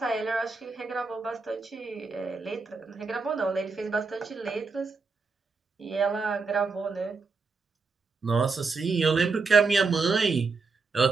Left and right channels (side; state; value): left; quieter; 4.4 dB